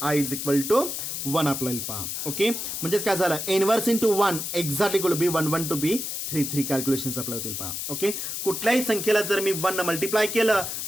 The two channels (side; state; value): left; noise; hiss, 4 dB below the sound